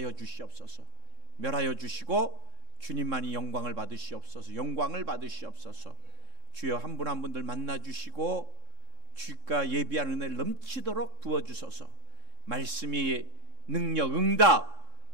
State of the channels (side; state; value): left; late; 3.7 ms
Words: 주시옵소서. 멸하여 주시고 주님만이 영광을 받으시옵소서. 영광을 받으시옵소서. 주여 한 분 한 분들 만나 주시고 주가 예비한 은혜를 넘치도록 부어주소서. 말씀이 능력, 응답,